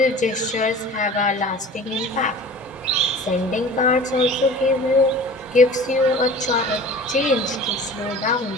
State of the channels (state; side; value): normal; both; correlation 0.41